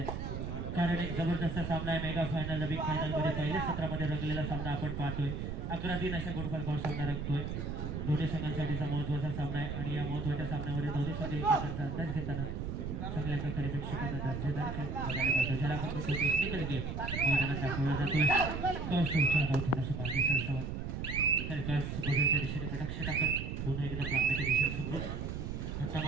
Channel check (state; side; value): noise; right; rumble, 4 dB below the sound